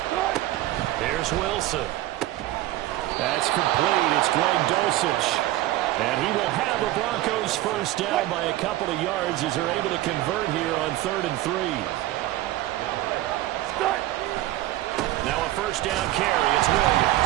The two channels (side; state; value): left; quieter; 15.8 dB